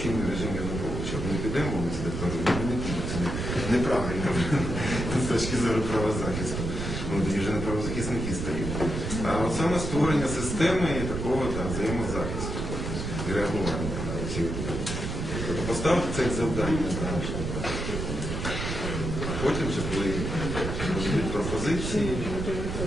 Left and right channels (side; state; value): right; noise; rumble, 3 dB below the sound